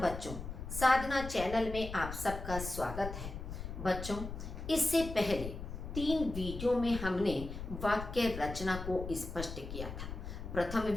साधना चैनल में आप सबका स्वागत है। बच्चों, इससे पहले 3 वीडियो में हमने वाक्य रचना को स्पष्ट किया था। प्रथम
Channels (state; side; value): noise; left; rumble, 8 dB below the sound